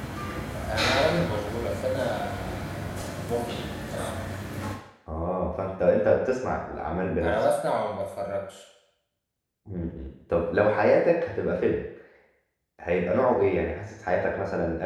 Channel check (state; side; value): identical; both; correlation 1.00